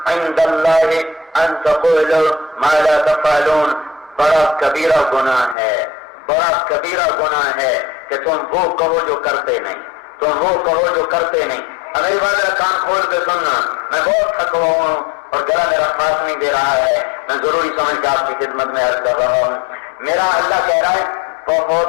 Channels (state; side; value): drops out; right; at 5.6 s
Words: عند اللہ ان تقولوا ما لا تفعلون, بڑا کبیرہ گناہ ہے, بڑا کبیرہ گناہ ہے کہ تم وہ کہو جو کرتے نہیں, تم وہ کہو جو کرتے نہیں. میری بات کان کھول کے سننا, میں بہت تھکا ہوا ہوں اور گلا میرا ساتھ نہیں دے رہا ہے, میں ضروری سمجھ کے آپ کی خدمت میں عرض کر رہا ہوں. میرا اللہ کہہ رہا ہے